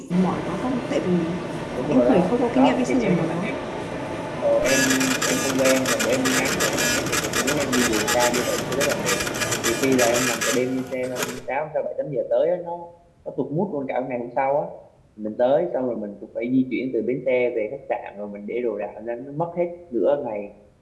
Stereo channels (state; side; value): identical; both; correlation 1.00